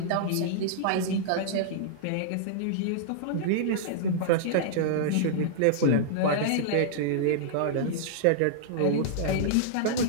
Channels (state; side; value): different; both; correlation -0.02